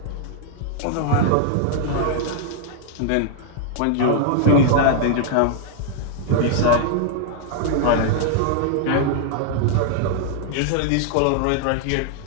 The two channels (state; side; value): different; both; correlation -0.01